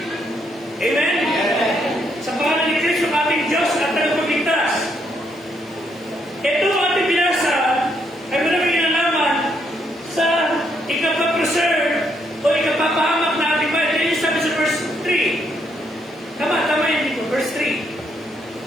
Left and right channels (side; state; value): both; normal; correlation 0.74